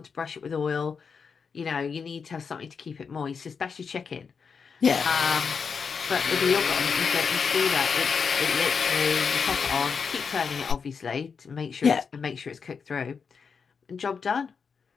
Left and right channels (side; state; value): right; quieter; 5.8 dB